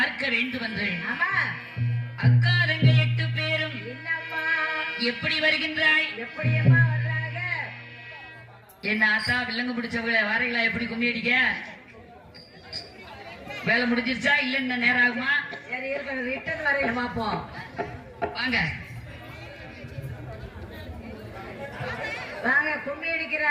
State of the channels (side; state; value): both; identical; correlation 1.00